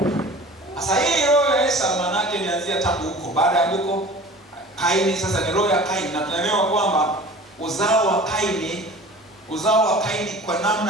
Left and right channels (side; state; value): both; normal; correlation 0.41